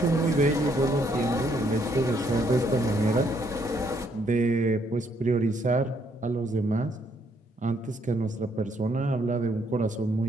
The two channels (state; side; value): normal; both; correlation 0.70